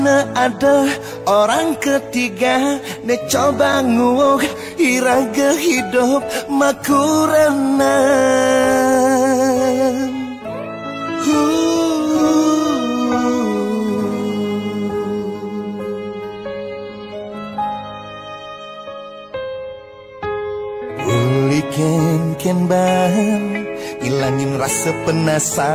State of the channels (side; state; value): both; identical; correlation 1.00